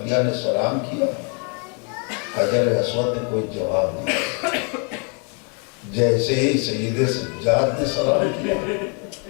نے سلام کیا. حجر اسود نے کوئی جواب نہیں. جیسے ہی سید سجاد نے سلام کیا،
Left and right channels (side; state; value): right; quieter; 37.4 dB